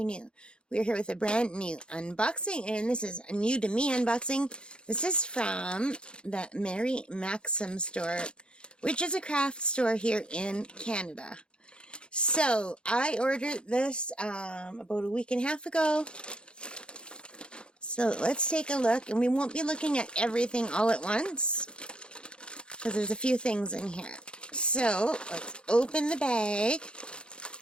new. We're here with a brand new unboxing, and this is a new to me unboxing. This is from the Mary Maxim store, which is a craft store here in Canada. So I ordered this about a week and a half ago. So let's take a look, and we won't be looking at everything all at once because there's a few things in here. So, let's open the bag,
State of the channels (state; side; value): late; right; 0.053 ms